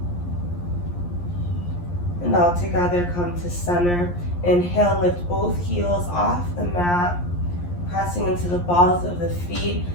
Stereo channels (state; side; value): late; right; 11 ms